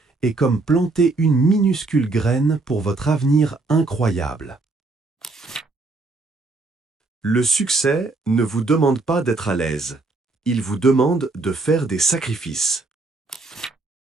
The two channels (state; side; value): quieter; left; 3.4 dB